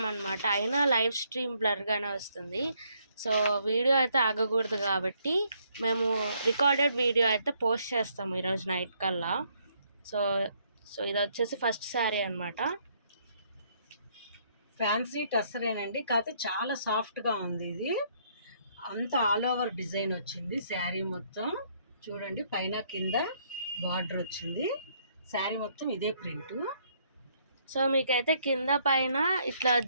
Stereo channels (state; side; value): inverted; both; correlation -0.69